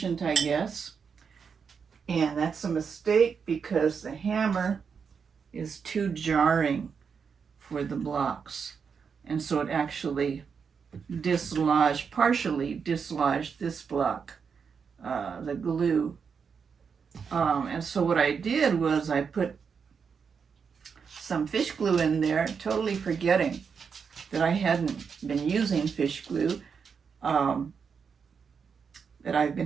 I guess. And that's a mistake because the hammer is too jarring for the blocks. And so it actually partially dislodged this block, the glue. And so what I did was I put some fish glue in there, totally forgetting that I hadn't been using fish glue, that I've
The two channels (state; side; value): quieter; left; 6.2 dB